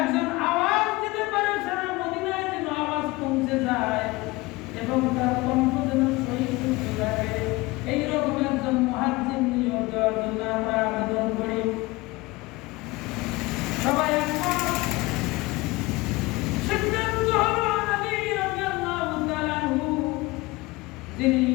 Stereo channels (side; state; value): right; quieter; 22.2 dB